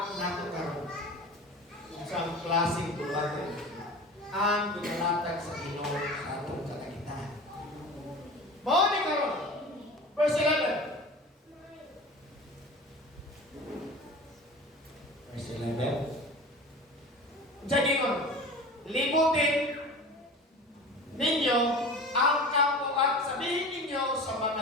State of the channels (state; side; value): normal; both; correlation 0.36